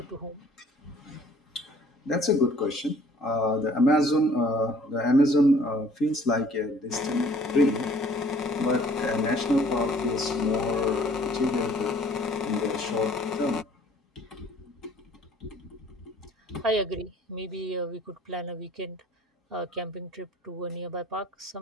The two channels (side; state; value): both; normal; correlation 0.56